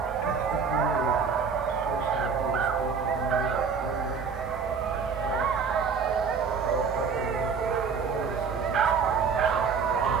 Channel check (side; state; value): left; quieter; 5.9 dB